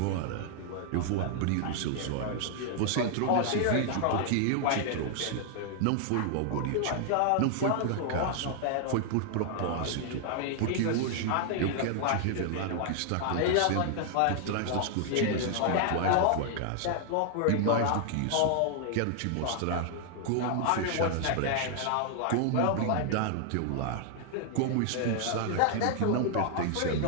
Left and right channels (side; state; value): both; different; correlation 0.00